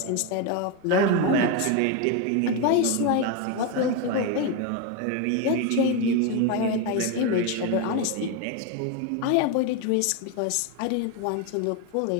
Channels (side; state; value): both; different; correlation 0.02